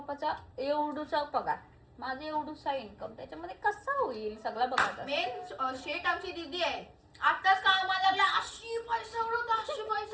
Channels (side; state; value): both; identical; correlation 1.00